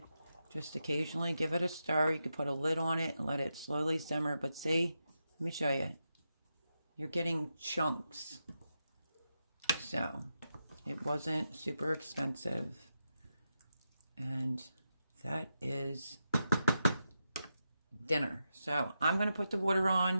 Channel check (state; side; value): inverted; both; correlation -0.87